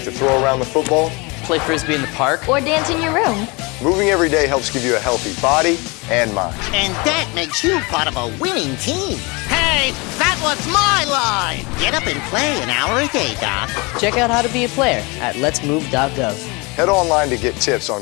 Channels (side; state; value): right; quieter; 27.5 dB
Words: to throw around the football. play frisbee in the park, Or dance in your room. Moving every day helps give you a healthy body and mind. And that makes you part of a winning team. Hey, that was my line. Get up and play an hour a day, Doc. check out how to be a player at letsmove.gov. Head online to get tips